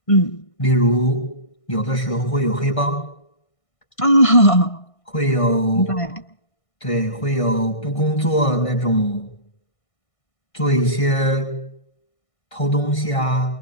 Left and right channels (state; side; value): late; right; 1.6 ms